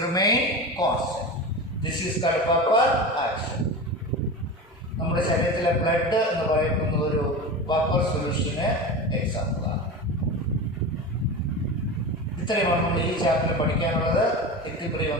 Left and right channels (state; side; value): normal; both; correlation 0.27